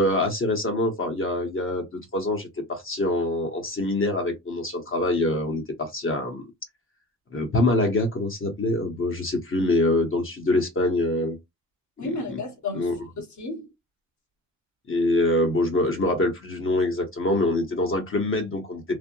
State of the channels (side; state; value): both; normal; correlation 0.37